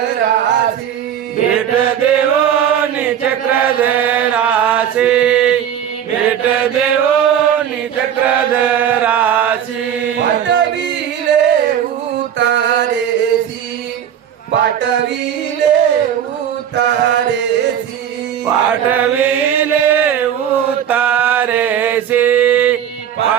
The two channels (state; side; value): quieter; left; 9.4 dB